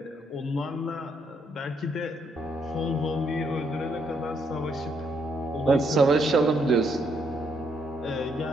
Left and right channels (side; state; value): both; normal; correlation 0.74